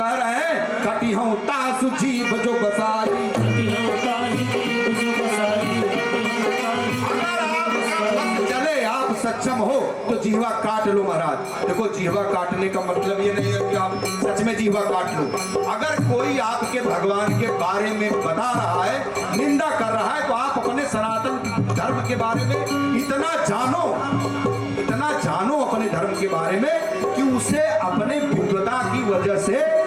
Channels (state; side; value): identical; both; correlation 1.00